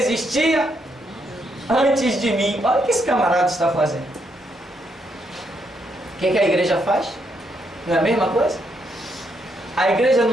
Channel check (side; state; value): both; normal; correlation 0.77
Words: antes de mim. Olha o que esse camarada está fazendo. O que a igreja faz? Não é a mesma coisa? A igreja